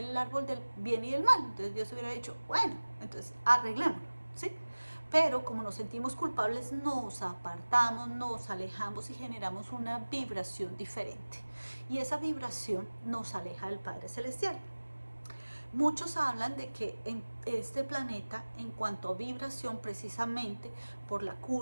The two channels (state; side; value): inverted; both; correlation -1.00